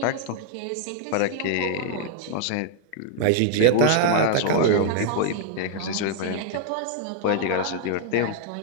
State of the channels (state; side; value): different; both; correlation -0.01